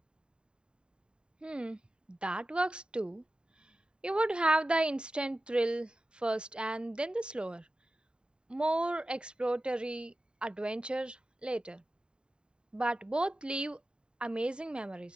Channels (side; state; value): left; late; 0.049 ms